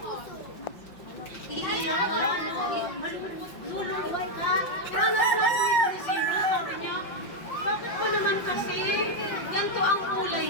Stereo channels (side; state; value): right; late; 5.6 ms